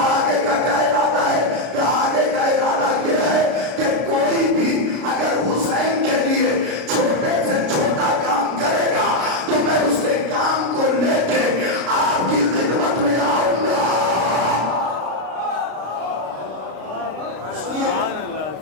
کا کیا ارادہ ہے؟ کہ آگے کا ارادہ یہ ہے کہ کوئی بھی اگر حسین کے لیے چھوٹے سے چھوٹا کام کرے گا تو میں اس کے کام کو لے کے آپ کی خدمت میں آؤں گا. سنیے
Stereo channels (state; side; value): late; left; 32 ms